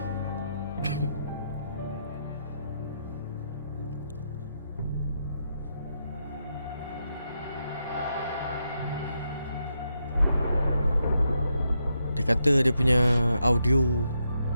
Dia kata dia punya audio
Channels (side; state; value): both; inverted; correlation -0.81